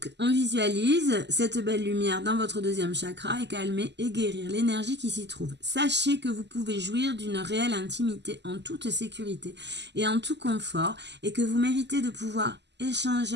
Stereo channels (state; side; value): late; left; 0.50 ms